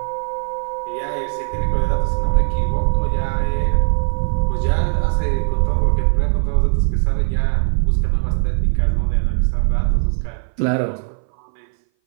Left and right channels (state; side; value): silent; left; 59 dB below the other